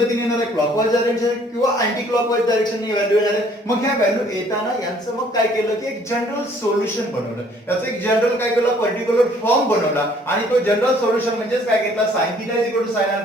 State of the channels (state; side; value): normal; both; correlation 0.59